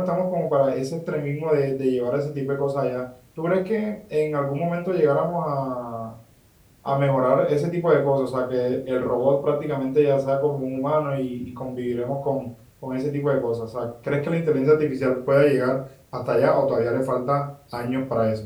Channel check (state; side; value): identical; both; correlation 1.00